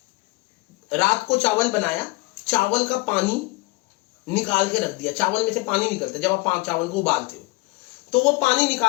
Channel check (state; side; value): quieter; right; 23.9 dB